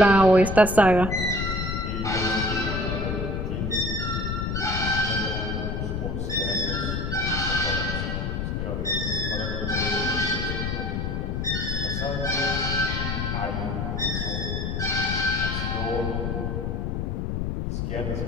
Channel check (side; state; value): left; noise; rumble, 1 dB below the sound